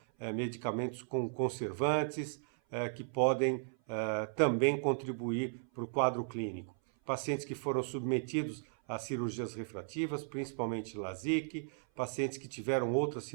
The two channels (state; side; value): silent; left; 54 dB below the other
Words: medicamentos com conservantes, que podem também contribuir para o quadro clínico. Pacientes que foram submetidos a cirurgias refrativas, principalmente LASIK, pacientes que tiveram outras